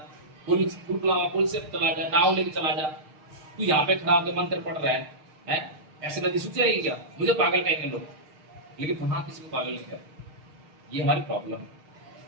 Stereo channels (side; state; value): left; late; 6.6 ms